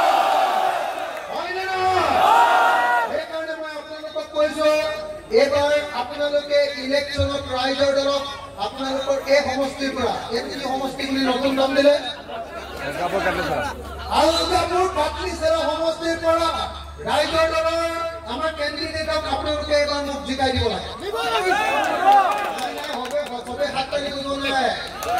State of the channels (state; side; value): identical; both; correlation 1.00